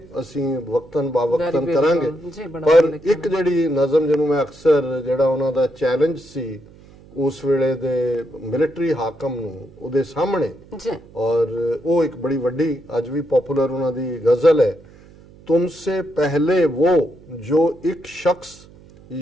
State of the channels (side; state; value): right; noise; hum, 23 dB below the sound